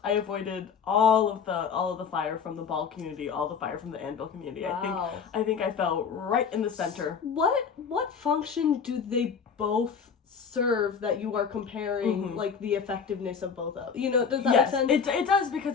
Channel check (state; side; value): quieter; right; 6.3 dB